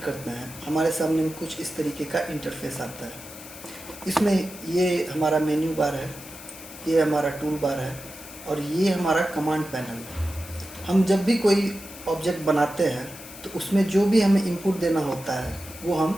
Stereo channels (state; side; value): noise; left; hiss, 15 dB below the sound